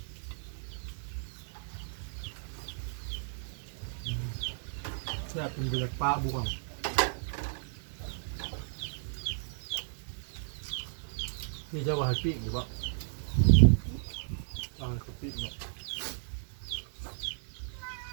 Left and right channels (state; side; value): silent; left; 55 dB below the other